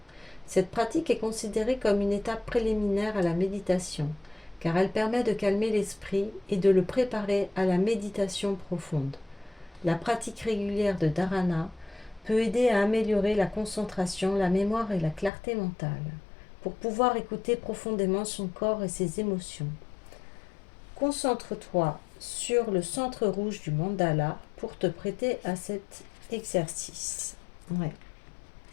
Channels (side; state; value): right; drops out; at 15.3 s